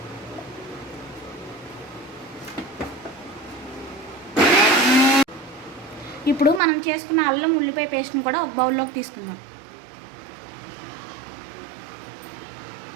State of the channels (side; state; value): left; drops out; at 6.6 s